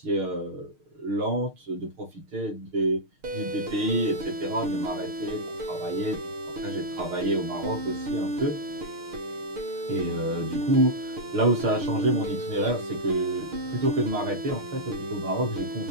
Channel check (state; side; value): late; left; 6.5 ms